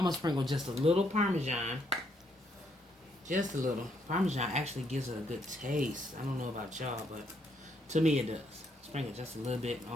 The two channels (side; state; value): both; normal; correlation 0.73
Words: gonna sprinkle just a little Parmesan. Just a little. Parmesan actually gives it a good taste. I don't know about y'all, but to me it does. Sprinkle just a little bit